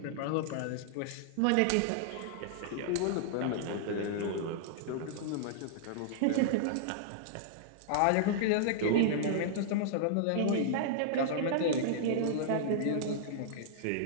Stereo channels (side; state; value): both; different; correlation -0.01